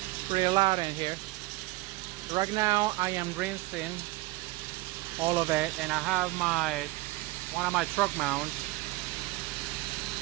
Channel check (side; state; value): left; quieter; 20.9 dB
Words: Pretty loud in here. Right now I am rinsing all of it, and I have one of my truck mounts